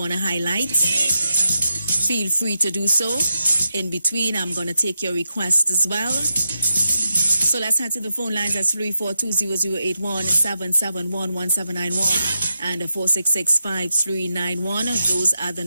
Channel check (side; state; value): both; inverted; correlation -0.88